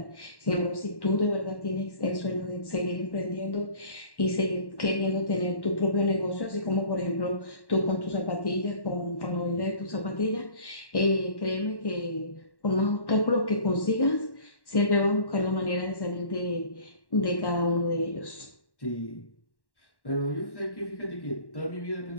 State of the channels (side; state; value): right; late; 1.1 ms